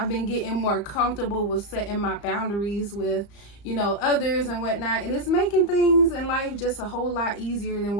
been getting more comfortable with setting my boundaries with, you know, others and whatnot, and it's making things in life just a whole lot easier than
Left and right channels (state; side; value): late; right; 34 ms